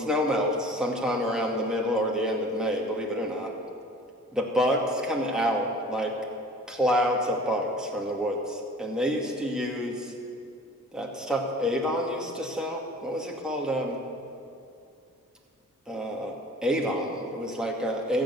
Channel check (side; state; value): both; normal; correlation 0.46